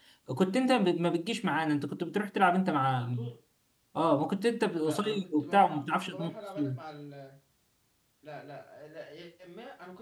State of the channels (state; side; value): identical; both; correlation 1.00